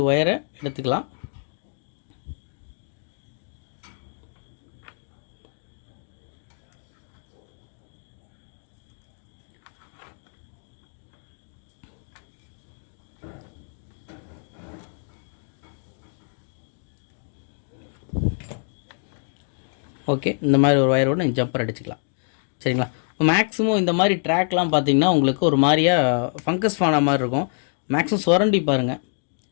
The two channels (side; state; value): right; silent; 57 dB below the other